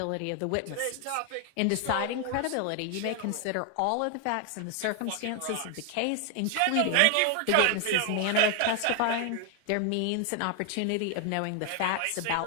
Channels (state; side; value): different; both; correlation 0.00